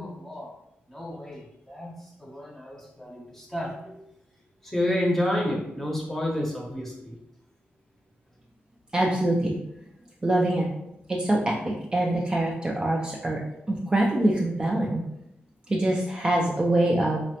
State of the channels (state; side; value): normal; both; correlation 0.89